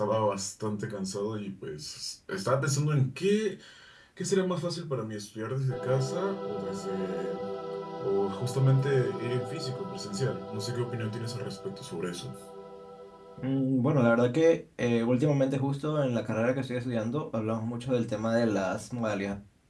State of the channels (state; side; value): identical; both; correlation 1.00